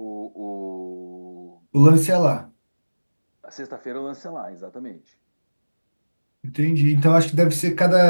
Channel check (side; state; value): both; inverted; correlation -1.00